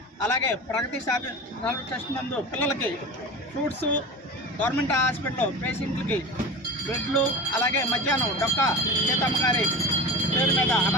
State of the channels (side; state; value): both; normal; correlation 0.31